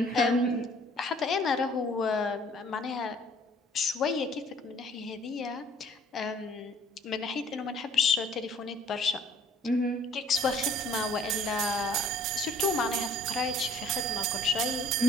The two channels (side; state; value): both; normal; correlation 0.55